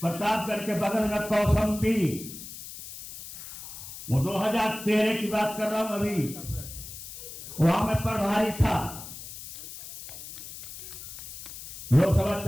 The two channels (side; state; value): left; noise; hiss, 12 dB below the sound